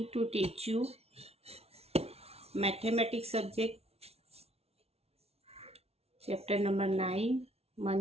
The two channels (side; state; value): left; late; 0.30 ms